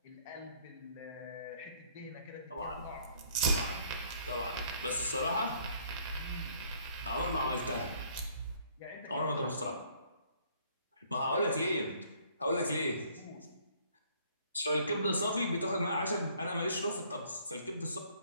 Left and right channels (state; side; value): inverted; both; correlation -0.61